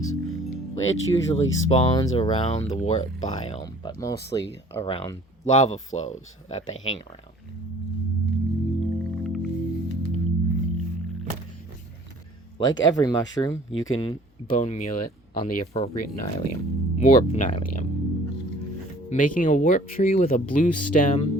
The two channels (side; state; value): both; normal; correlation 0.52